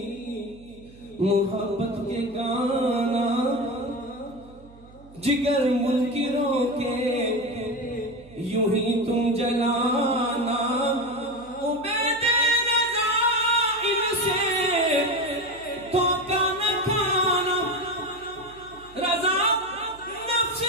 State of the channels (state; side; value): noise; right; hum, 23 dB below the sound